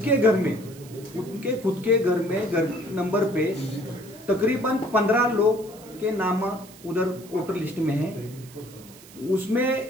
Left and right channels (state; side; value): noise; right; hiss, 21 dB below the sound